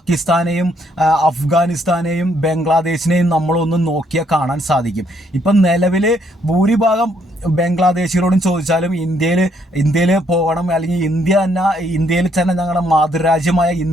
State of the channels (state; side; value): normal; both; correlation 0.70